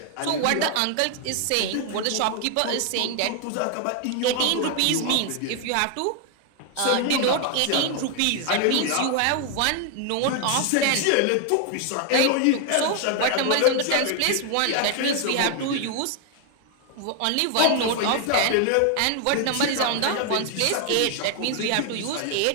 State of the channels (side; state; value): both; different; correlation 0.00